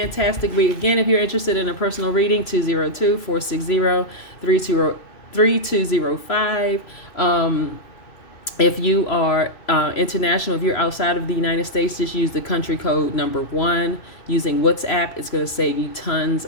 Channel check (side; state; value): right; late; 3.0 ms